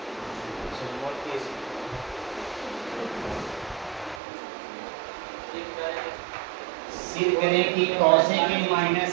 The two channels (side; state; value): left; drops out; at 4.2 s